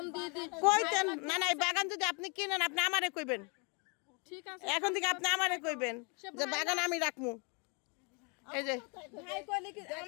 দিয়ে দিই। কইতেন না না, এই বাগান যদি আপনি কিনেন আপনি আমারে কইবেন। ঠিক আছে, এখন থেকে আপনি আমারে কইবেন যে বাগান আমি রাখমু। এই যে ভাই কইলে কি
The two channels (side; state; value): right; quieter; 34.3 dB